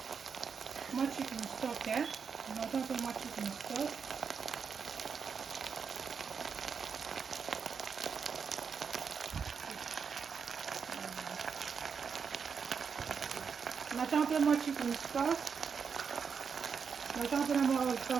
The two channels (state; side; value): quieter; left; 6.2 dB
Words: mwa chicken stock. Naotia mpe mwa chicken stock. Naotia mpe mwa chicken stock. Naotia mpe na mwa all